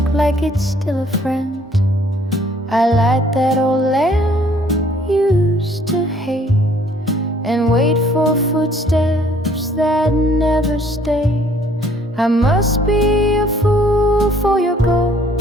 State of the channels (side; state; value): both; normal; correlation 0.60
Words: like it's still a friend. I light that old lamp you used to hate and wait for footsteps that never stay. I must be a fool for your